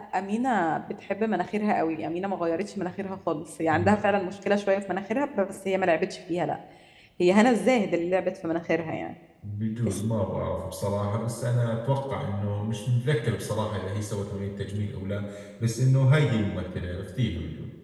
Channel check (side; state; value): both; identical; correlation 1.00